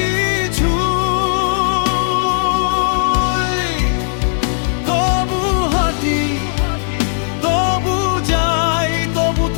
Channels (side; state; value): right; silent; digital silence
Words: তবু হাঁটি, তবু যাই, তবু